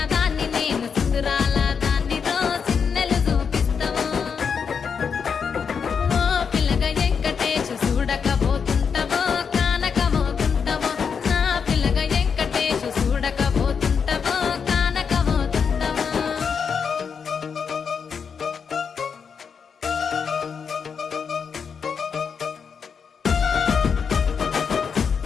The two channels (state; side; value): quieter; right; 6.3 dB